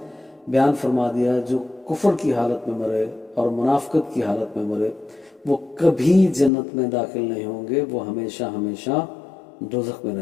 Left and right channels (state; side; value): drops out; right; at 6.5 s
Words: بیان فرما دیا ہے، جو کفر کی حالت میں مرے اور منافقت کی حالت میں مرے وہ کبھی جنت میں داخل نہیں ہوں گے، وہ ہمیشہ ہمیشہ دوزخ میں